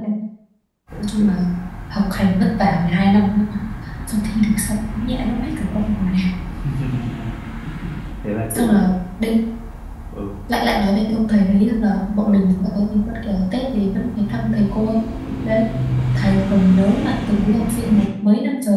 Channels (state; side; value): identical; both; correlation 1.00